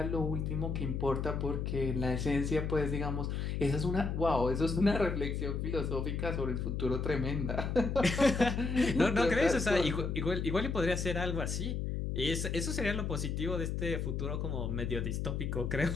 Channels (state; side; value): noise; left; hum, 2 dB below the sound